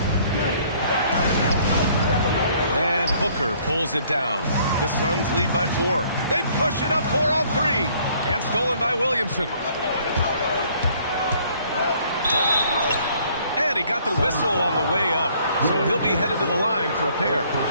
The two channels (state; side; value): inverted; both; correlation -0.61